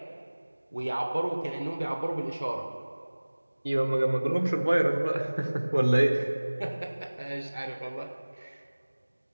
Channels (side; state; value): both; inverted; correlation -1.00